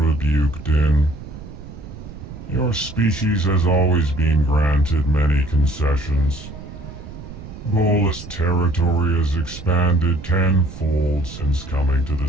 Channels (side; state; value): right; noise; rumble, 13 dB below the sound